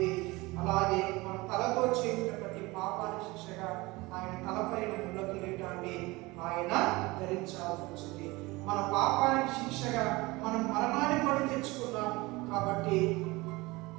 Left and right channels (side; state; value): left; quieter; 22.3 dB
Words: అలాగే మన తలతో చేసిన ప్రతి పాపానికి శిక్షగా ఆయన తలపైన ముళ్ళ కిరీటాన్ని ఆయన ధరించాల్సి వచ్చింది. మన పాపానికి శిక్షగా మనం మరణాన్ని కొని తెచ్చుకున్నాం. కాబట్టి